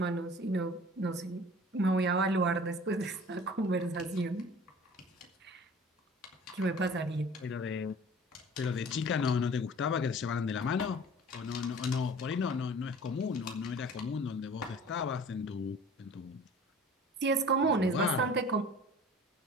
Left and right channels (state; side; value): normal; both; correlation 0.45